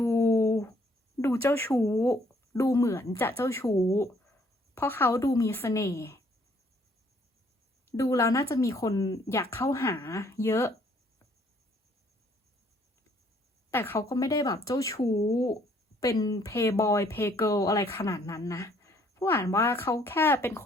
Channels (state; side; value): normal; both; correlation 0.64